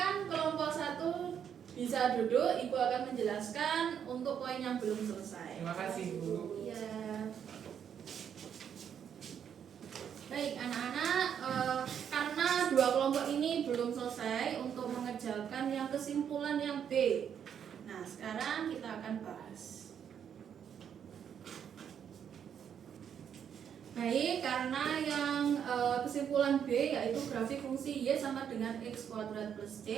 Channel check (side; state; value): left; quieter; 8.3 dB